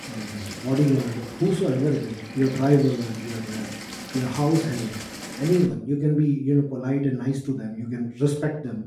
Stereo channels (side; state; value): both; identical; correlation 1.00